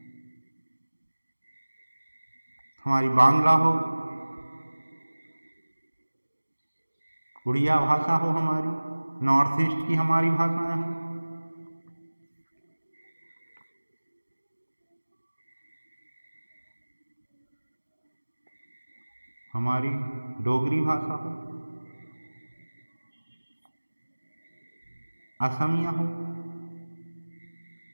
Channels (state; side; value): inverted; both; correlation -1.00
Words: हमारी बांग्ला हो, उड़िया भाषा हो, हमारी नॉर्थ ईस्ट की हमारी भाषाएं हैं, हमारी डोगरी भाषा हो, असमिया हो,